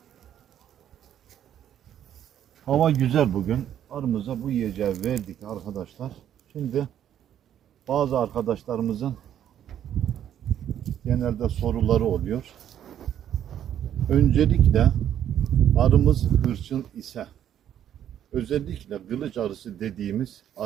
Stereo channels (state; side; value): quieter; left; 10.4 dB